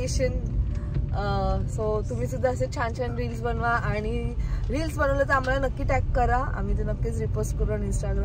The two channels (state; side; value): identical; both; correlation 1.00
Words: सो तुम्ही सुद्धा असे छान छान रील्स बनवा आणि रील्स बनवलं तर आम्हाला नक्की टॅग करा, आम्ही ते नक्कीच रिपोस्ट करू ऑन